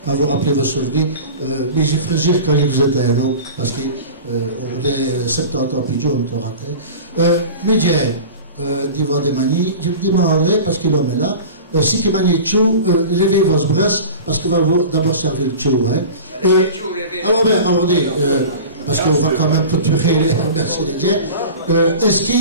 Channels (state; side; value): inverted; both; correlation -0.36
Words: quand vous rappelez vos souvenirs. Mais j'ai frégir quand je vous étais un homme, parce qu'on est 70 ans plus jeune, on raté. Mais j'ai d'Ivoire des manies, je me demanderai, parce que l'homme est là, si qui manie tchou, levez vos bras, parce qu'on va d'abord servir le tchou. Alors, bien, attendez, parce qu'on va quand même clôturer les remercier les dieux. Est-ce